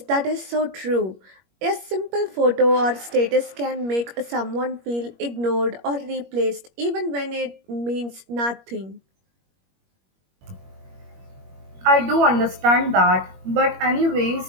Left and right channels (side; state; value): left; late; 21 ms